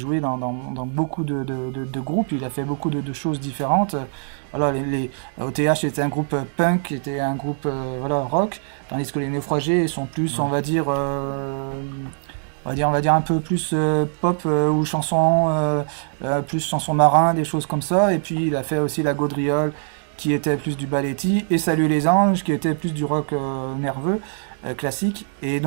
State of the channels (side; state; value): left; silent; 64 dB below the other